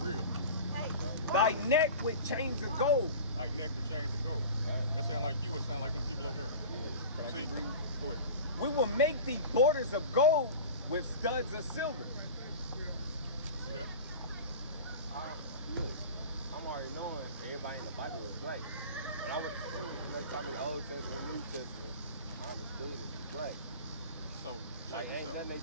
Real. Thy neck with chains of gold. Like neck with chains of gold. That sound like you. It sound like them people over there. Can I See? keep reading? Go ahead. We will make thee borders of gold with studs of silver. See that? Look, I'm already knowing everybody in the Bible was black. When I went to school, and they taught me the Old Testament, New Testament, I understood it was black. So Like, check ain't this out. nothing they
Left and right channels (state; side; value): inverted; both; correlation -0.35